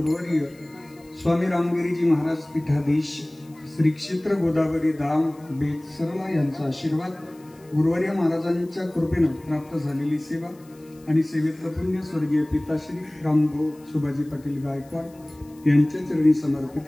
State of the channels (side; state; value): left; noise; hiss, 28 dB below the sound